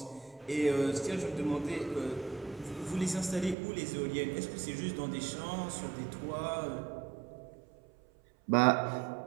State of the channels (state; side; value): drops out; left; at 3.6 s